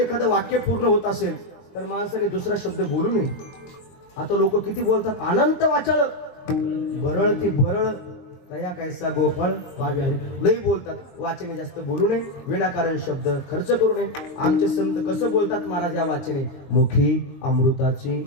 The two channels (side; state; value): right; late; 22 ms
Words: वाक्य पूर्ण होत असेल तर माणसाने दुसरा शब्द बोलू नये. आता लोक किती बोलतात, अनंत वाचळ बरळ ती बरळ तया कैसा गोफळ पाव्या लई बोलतात. वाचने जास्त बोलू नये, विनाकारण शब्द खर्च करू नये. आमचे संत कसं बोलतात महाराज या वाचने, मुखी अमृताची